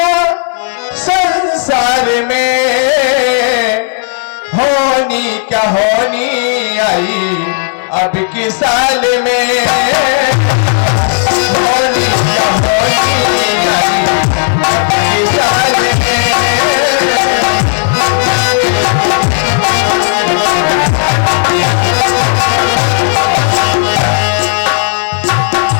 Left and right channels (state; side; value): silent; right; digital silence